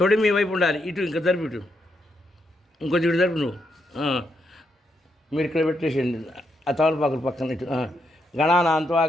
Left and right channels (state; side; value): normal; both; correlation 0.80